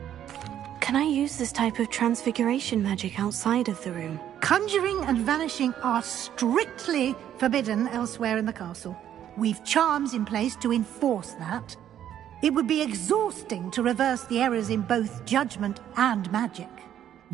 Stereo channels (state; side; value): quieter; left; 10.6 dB